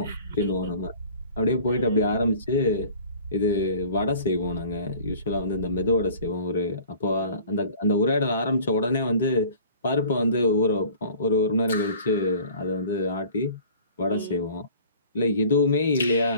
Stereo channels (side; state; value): both; inverted; correlation -0.48